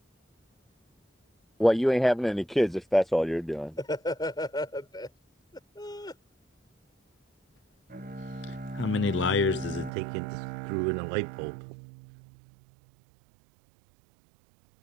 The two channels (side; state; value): left; drops out; at 9.9 s